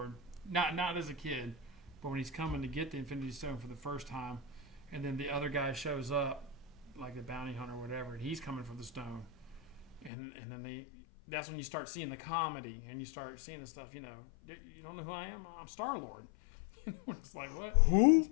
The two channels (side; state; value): right; drops out; at 10.1 s